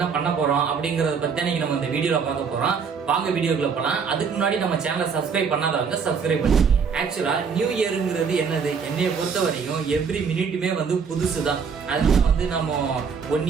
பண்ண போறோம் அப்படிங்கறத பத்தி இன்னைக்கு நம்ம இந்த வீடியோல பார்க்க போறோம். வாங்க வீடியோக்குள்ள போலாம். அதுக்கு முன்னாடி நம்ம சேனலை சப்ஸ்கிரைப் பண்ணாதவங்க சப்ஸ்கிரைப் பண்ணிக்கோங்க. ஆக்சுவலா நியூ இயருங்கிறது என்னது, என்னைய பொறுத்த வரையும் எவ்ரி மினிட்டுமே புதுசு தான். அதனால நம்ம 1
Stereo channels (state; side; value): quieter; left; 6.0 dB